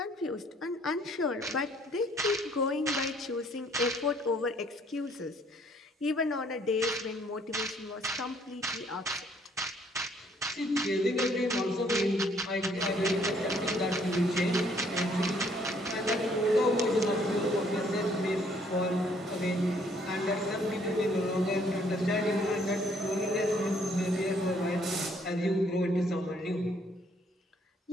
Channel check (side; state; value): both; normal; correlation 0.64